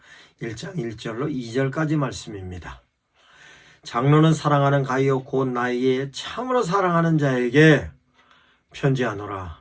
1장 1절로 2절까지 말씀입니다. 장로는 사랑하는 가이오 곧 나에게 참으로 사랑하는 자에게 편지하노라.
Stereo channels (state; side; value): identical; both; correlation 1.00